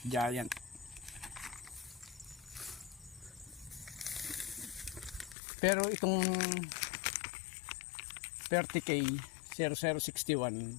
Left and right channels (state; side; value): drops out; right; at 5.4 s